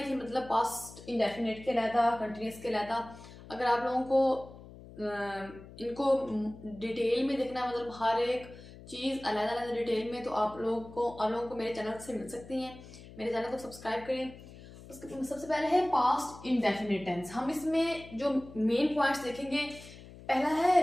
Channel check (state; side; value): noise; left; hum, 17 dB below the sound